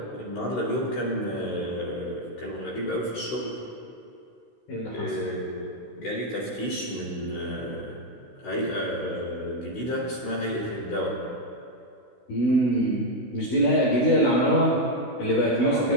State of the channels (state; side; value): late; right; 16 ms